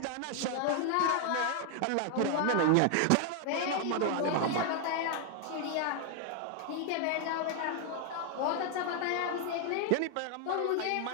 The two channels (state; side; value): different; both; correlation 0.00